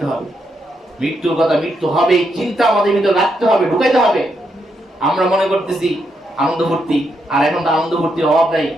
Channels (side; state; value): both; normal; correlation 0.80